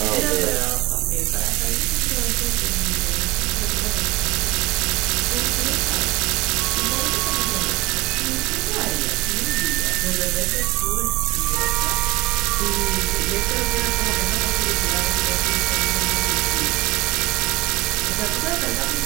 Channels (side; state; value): left; quieter; 20.4 dB